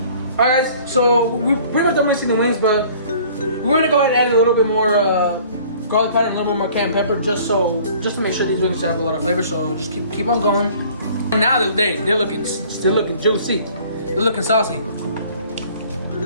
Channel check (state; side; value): inverted; both; correlation -0.52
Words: Alright guys, so we pretty much done mixing the wings, but we're gonna go ahead and add a little bit more garlic powder and a little bit more cayenne pepper, just to make sure these wings have a lot of flavor. So just keep on going. And now they're looking still looking juicy. They're looking saucy.